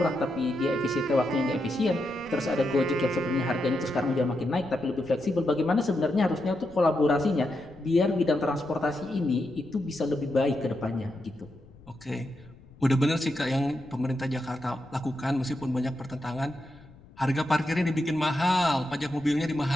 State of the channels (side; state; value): left; noise; rumble, 23 dB below the sound